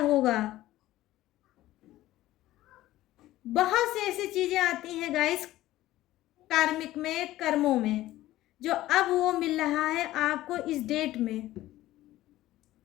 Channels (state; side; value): quieter; right; 15.5 dB